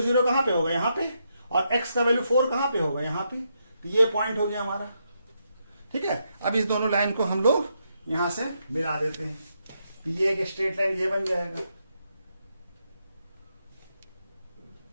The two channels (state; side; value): inverted; both; correlation -0.80